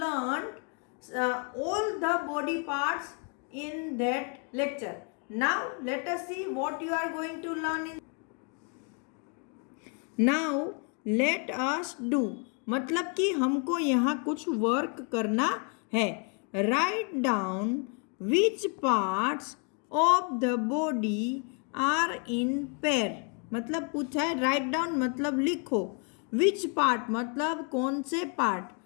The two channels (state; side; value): quieter; right; 38.4 dB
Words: all the body parts in that lecture. Now, let us see what you are going to learn in. Now, let us do. मतलब कि हमको यहाँ कुछ work करना है. Write down which parts of the body are in pair. मतलब पूछा है राइट डाउन मतलब लिखो. विच पार्ट मतलब कौन से पार्ट